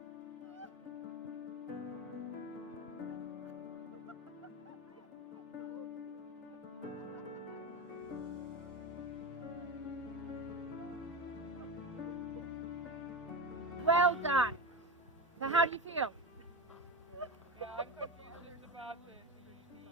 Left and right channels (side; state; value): both; normal; correlation 0.22